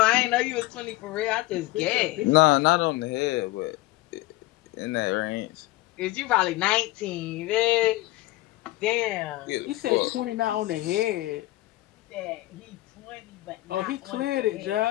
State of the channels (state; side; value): quieter; right; 18.4 dB